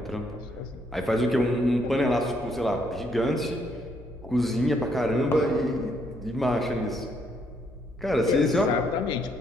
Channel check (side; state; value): both; normal; correlation 0.71